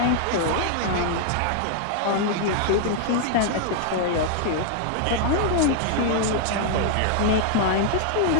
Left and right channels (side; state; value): both; different; correlation 0.00